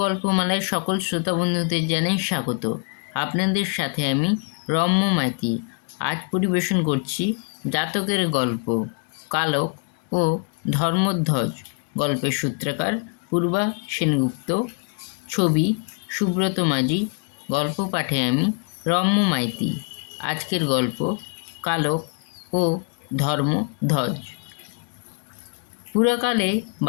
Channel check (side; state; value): right; quieter; 36.3 dB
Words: গল্পমালার সকল শ্রোতা বন্ধুদের জানাই স্বাগত। আপনাদের সাথে আমি রম্য মাইতি। আজ পরিবেশন করছি জাতকের গল্প কালক ও ধর্মধ্বজ। গল্পের সূত্রকার পূর্বা সেনগুপ্ত, ছবি সুব্রত মাঝি, গল্প পাঠে আমি রম্য মাইতি। আজকের গল্প কালক ও ধর্মধ্বজ। পুরাকালে